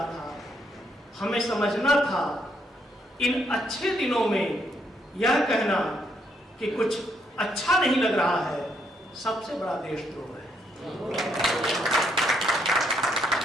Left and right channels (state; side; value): normal; both; correlation 0.74